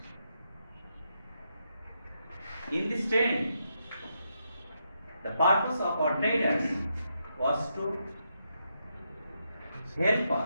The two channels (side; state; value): both; inverted; correlation -0.81